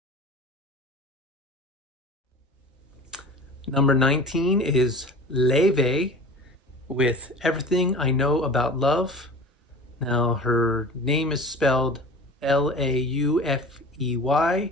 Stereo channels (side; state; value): both; normal; correlation 0.39